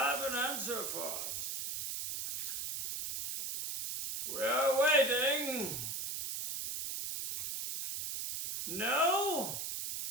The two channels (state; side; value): noise; right; hiss, 3 dB below the sound